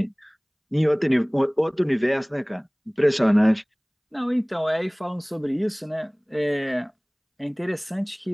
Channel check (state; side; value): identical; both; correlation 1.00